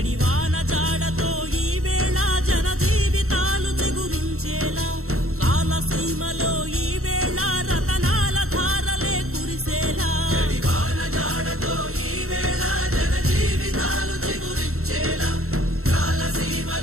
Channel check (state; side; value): late; left; 0.63 ms